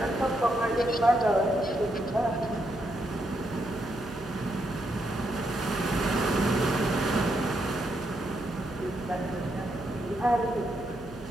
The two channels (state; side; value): noise; right; hum, 18 dB below the sound